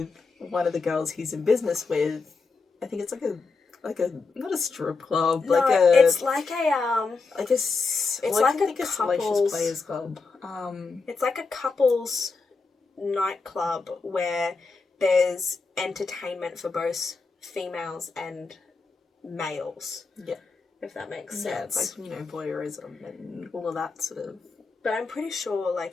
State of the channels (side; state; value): right; quieter; 4.3 dB